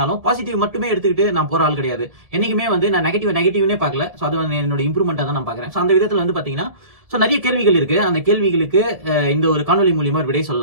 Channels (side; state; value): left; late; 1.7 ms